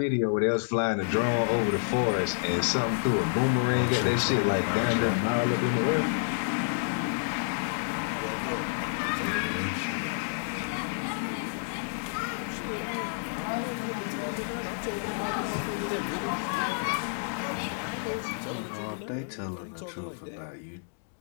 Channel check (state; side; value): silent; right; digital silence